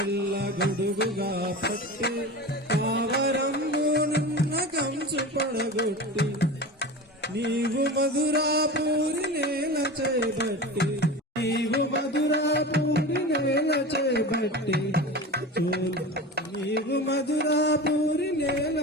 గొడుగుగా పట్టి పావరంబు నున్న కంచు పడగొట్టి నీవు మధురాపూరి నేల చేపట్టి నీవు మధురాపూరి నేల చేపట్టి నీవు మధురాపూరి నేల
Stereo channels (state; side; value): normal; both; correlation 0.30